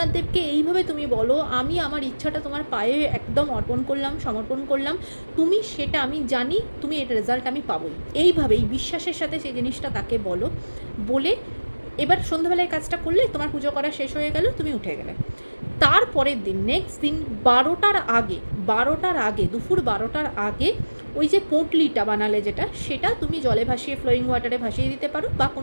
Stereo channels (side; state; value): both; inverted; correlation -1.00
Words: দেবকে এইভাবে তুমি বলো, আমি আমার ইচ্ছাটা তোমার পায়ে একদম অর্পণ করলাম, সমর্পণ করলাম, তুমি সেটা, আমি জানি তুমি এর রেজাল্ট আমি পাবোই। এইভাবেই বিশ্বাসের সাথে সেই জিনিসটা তাকে বলো। বলে এবার সন্ধ্যাবেলায় কাজটা করলে তোমার পুজো করা শেষ হয়ে গেল, তুমি উঠে গেলে। তারপরের দিন, নেক্সট দিন 12টার আগে, দুপুর 12টার আগে ওই যে পোঁটলিটা বানালে যেটা, সেটা তুমি জলে ভাসিয়ে, ফ্লোয়িং ওয়াটারে ভাসিয়ে দিতে পারো, বা